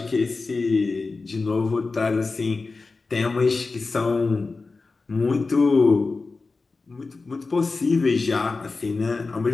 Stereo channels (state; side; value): quieter; right; 3.9 dB